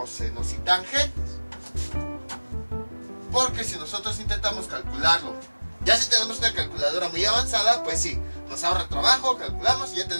y tangentes. Porque si nosotros intentamos calcularlo, ya si tenemos una calculadora muy avanzada, pues sí, nos ahorra trabajo, calculamos y ya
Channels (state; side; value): inverted; both; correlation -1.00